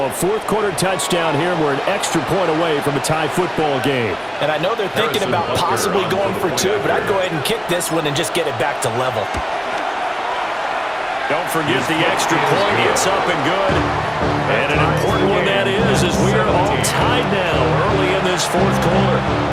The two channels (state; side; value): identical; both; correlation 1.00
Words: A 4th quarter touchdown here, and we're an extra point away from a tie football game. And I know they're thinking about possibly going for 2, but I'd go ahead and kick this one and just get it back to level. Don't forget the extra point. It's up and good. And an important one that is, as we are all tied now early in this 4th quarter.